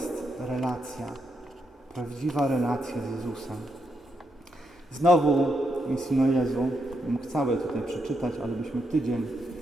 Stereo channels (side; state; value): both; normal; correlation 0.81